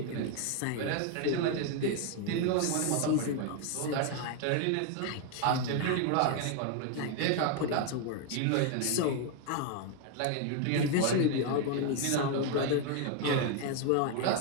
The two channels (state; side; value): different; both; correlation 0.01